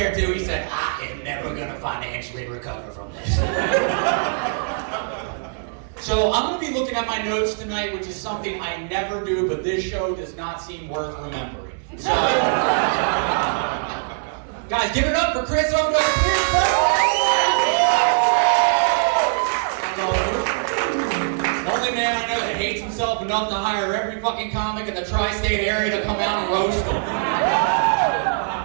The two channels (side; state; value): left; silent; digital silence